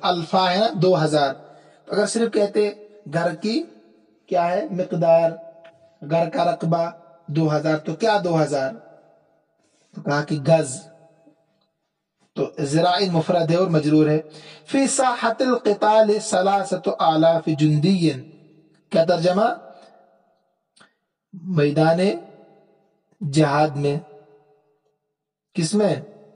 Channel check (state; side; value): identical; both; correlation 1.00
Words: الفا ہے نا 2000. اگر صرف کہتے گھر کی کیا ہے مقدار، گھر کا رقبہ 2000، تو کیا 2000؟ تو کہا کہ گز. تو ذراع مفرد ہے اور مجرور ہے. فی ساحت القتال 3000 جندی، کیا ترجمہ؟ میدان جہاد میں، کس میں؟